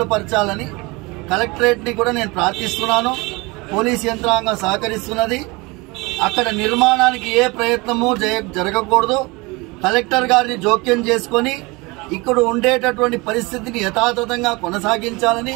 పరచాలని కలెక్టరేట్ ని కూడా నేను ప్రార్థిస్తున్నాను. పోలీస్ యంత్రాంగం సహకరిస్తున్నది. అక్కడ నిర్మాణానికి ఏ ప్రయత్నము జరగకూడదు. కలెక్టర్ గారిని జోక్యం చేసుకొని ఇక్కడ ఉండేటటువంటి పరిస్థితిని యథాతథంగా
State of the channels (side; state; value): left; quieter; 25.1 dB